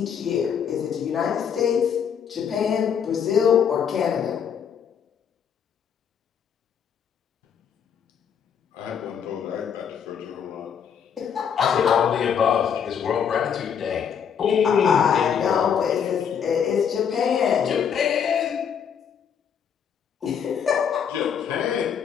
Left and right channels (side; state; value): right; quieter; 7.7 dB